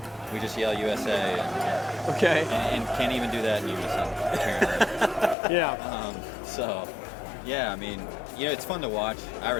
we just yell USA. Okay. And can't even do that in unison, apparently. Yeah. I mean, it's fun to watch. I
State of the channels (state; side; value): drops out; right; at 5.4 s